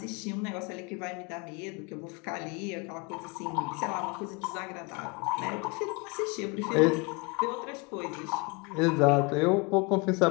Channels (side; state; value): right; quieter; 28.9 dB